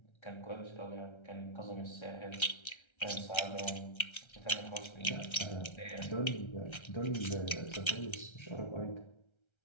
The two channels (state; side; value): late; right; 1.3 ms